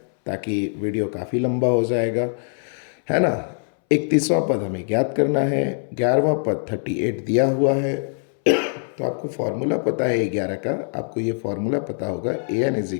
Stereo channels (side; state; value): right; silent; 64 dB below the other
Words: ताकि वीडियो काफ़ी लंबा हो जाएगा, है ना। 31वां पद हमें ज्ञात करना है, 11वां पद 38 दिया हुआ है। तो आपको फॉर्मूला पता है 11 का, आपको ये फॉर्मूला पता होगा an =